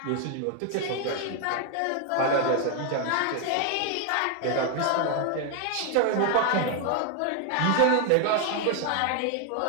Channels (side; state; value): both; different; correlation 0.00